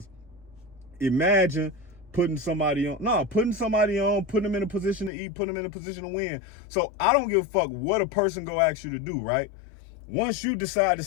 imagine putting somebody on, putting them in a position to eat, putting them in a position to win. So I don't give a fuck what a person go ask you to do, right? Once you decide to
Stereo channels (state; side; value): drops out; right; at 5.1 s